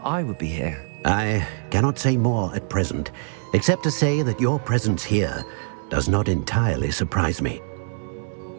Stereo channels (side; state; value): left; silent; 63 dB below the other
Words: I would be here? I cannot say more at present, except to say that your presence here does not entirely surprise me.